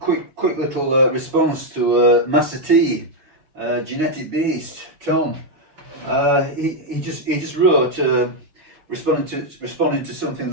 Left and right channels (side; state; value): left; late; 6.3 ms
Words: little response to Master T, genetic beast Tom. He just wrote responding to something